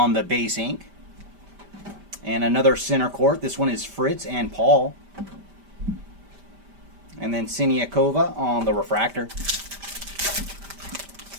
the base ink. And another center court. This one is Fritz and Paul. And then Siniakova on the refractor.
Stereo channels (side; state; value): left; late; 5.1 ms